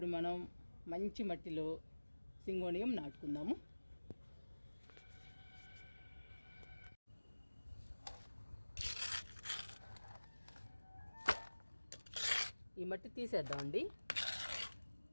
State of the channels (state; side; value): inverted; both; correlation -1.00